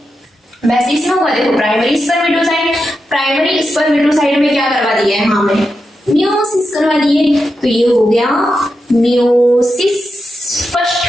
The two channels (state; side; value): normal; both; correlation 0.88